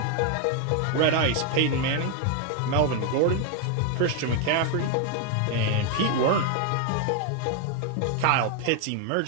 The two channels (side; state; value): both; different; correlation 0.01